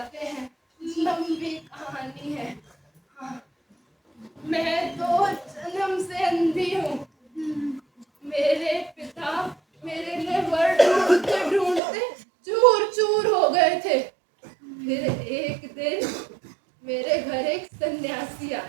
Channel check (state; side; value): drops out; left; at 11.8 s